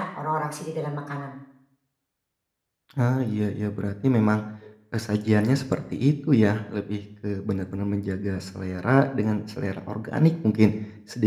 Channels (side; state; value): both; identical; correlation 1.00